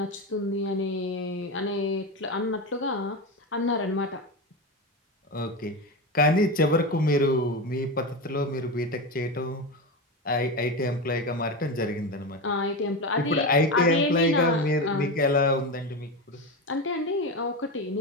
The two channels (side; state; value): both; normal; correlation 0.18